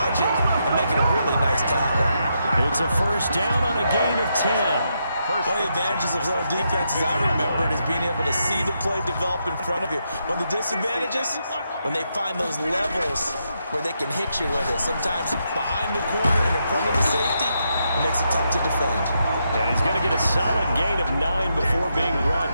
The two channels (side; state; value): both; inverted; correlation -0.81